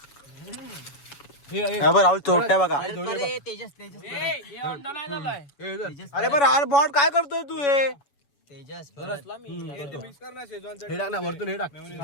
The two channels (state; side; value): late; right; 7.1 ms